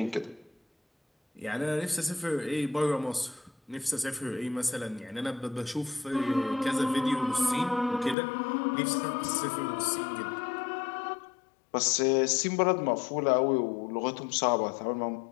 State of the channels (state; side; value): drops out; right; at 8.2 s